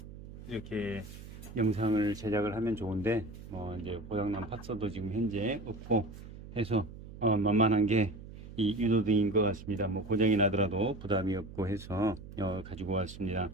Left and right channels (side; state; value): right; noise; hum, 14 dB below the sound